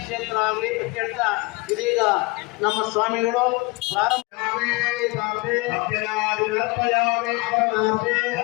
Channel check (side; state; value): right; quieter; 25.5 dB